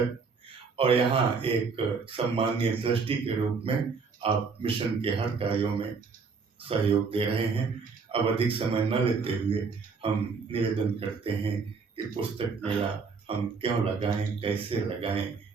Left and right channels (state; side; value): quieter; left; 5.0 dB